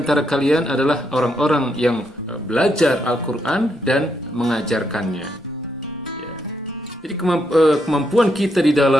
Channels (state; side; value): normal; both; correlation 0.78